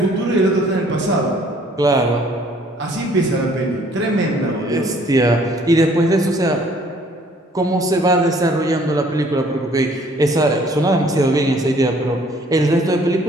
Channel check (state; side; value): normal; both; correlation 0.59